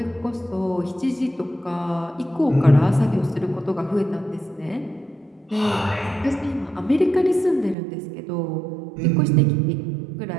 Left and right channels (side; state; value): left; drops out; at 7.8 s